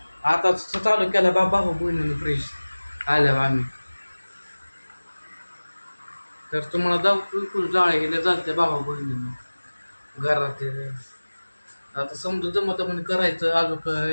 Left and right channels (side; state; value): both; inverted; correlation -1.00